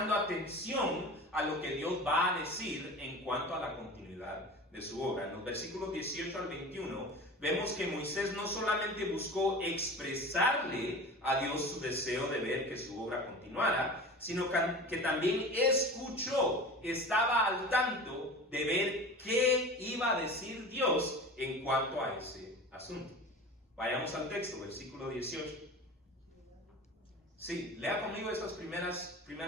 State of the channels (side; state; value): both; normal; correlation 0.35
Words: atención a lo que Dios va a decir en cuanto a la continuidad de su obra. En los versículos 18 al 21 vemos que Moisés no solamente buscó expresarle a Dios su deseo de ver que su obra continuara, sino que también escuchó, estaba al tanto de ver qué iba a decir Dios en cuanto a ese asunto. Vayamos al texto, versículo 18. Sí, lea conmigo esas primeras